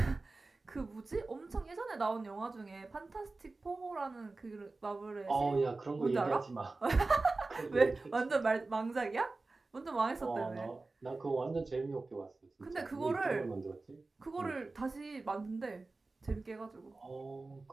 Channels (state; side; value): quieter; left; 3.5 dB